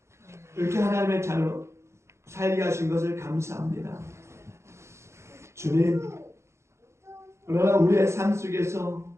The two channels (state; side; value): late; left; 0.13 ms